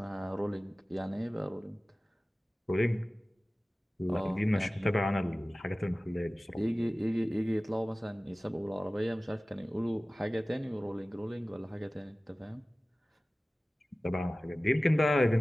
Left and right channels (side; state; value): both; normal; correlation 0.97